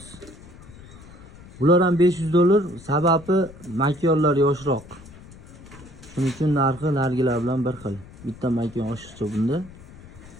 Bular ham $500, sababi makonlar yoshroq. Shuning uchun narxi nargilar bilan bir xil. Bitta makon oshiqcha bunda.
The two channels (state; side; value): noise; left; rumble, 19 dB below the sound